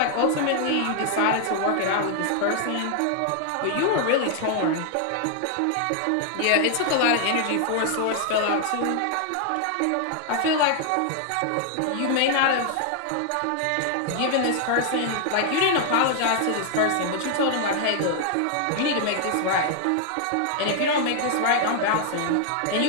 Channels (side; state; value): both; different; correlation 0.00